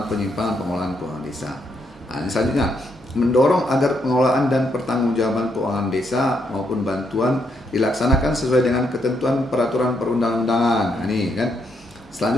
penyimpangan pengelolaan keuangan desa. Nah, ini selanjutnya mendorong agar pengelolaan dan pertanggungjawaban keuangan desa maupun bantuan dilaksanakan sesuai dengan ketentuan peraturan perundang-undangan. Nah, ini kan.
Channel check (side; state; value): both; normal; correlation 0.76